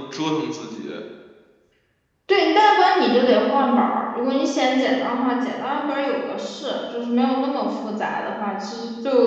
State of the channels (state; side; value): identical; both; correlation 1.00